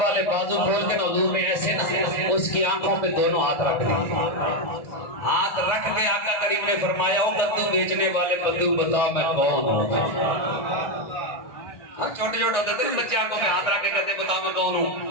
والے بازو کھول کے نا حضور نے ایسے نا اس کی آنکھوں پہ دونوں ہاتھ رکھ دیے. ہاتھ رکھ کے آقا کریم نے فرمایا او کدو بیچنے والے بدو بتا میں کون ہوں. چھوٹے چھوٹے ہوتے تھے بچے آنکھوں پہ ہاتھ رکھ کے کہتے بتا میں کون ہوں.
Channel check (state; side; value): late; right; 1.4 ms